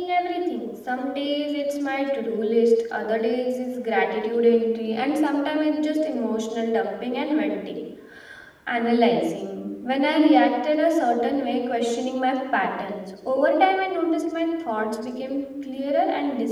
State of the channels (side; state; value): both; identical; correlation 1.00